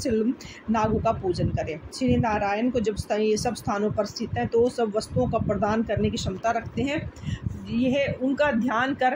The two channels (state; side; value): identical; both; correlation 1.00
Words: नागों का पूजन करें। श्री नारायण को जब ये सब स्थानों पर स्थित हैं तो सब वस्तुओं का प्रदान करने की क्षमता रखते हैं। यह उनका ध्यान